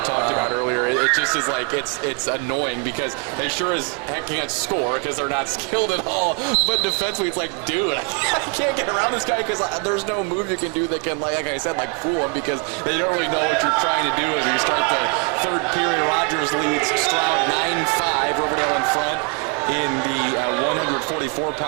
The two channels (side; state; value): left; quieter; 34.2 dB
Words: talked about earlier. It just is it's annoying because they sure as heck can't score because they're not skilled at all. But defensively, it's like, dude, I can't get around this guy because there's no move you can do that can, like I said, fool him because they don't really know what you're trying to do as you start the third period. Rogers leads Stroud 9-5, Riverdale in front in the